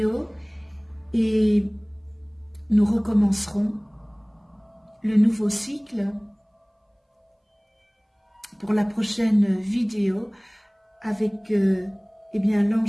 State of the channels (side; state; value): both; identical; correlation 1.00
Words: et nous recommencerons le nouveau cycle pour la prochaine vidéo avec eh bien